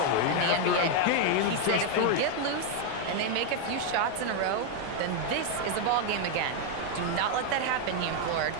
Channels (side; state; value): both; different; correlation 0.01